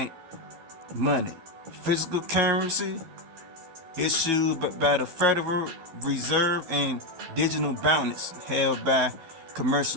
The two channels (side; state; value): left; late; 12 ms